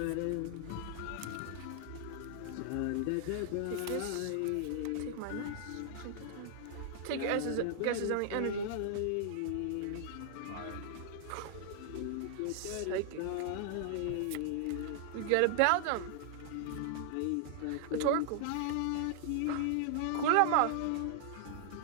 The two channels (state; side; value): different; both; correlation 0.00